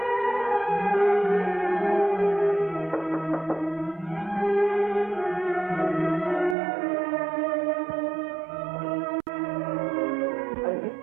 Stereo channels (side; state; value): left; drops out; at 6.6 s